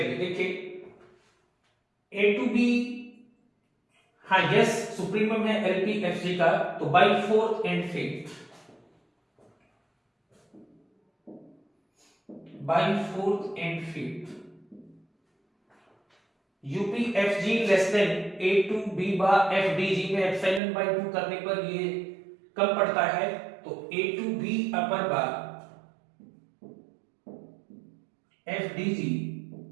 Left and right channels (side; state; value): left; drops out; at 20.6 s